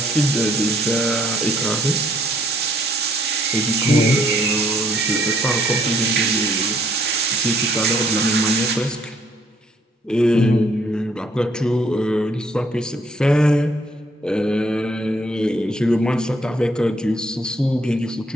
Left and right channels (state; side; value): normal; both; correlation 0.65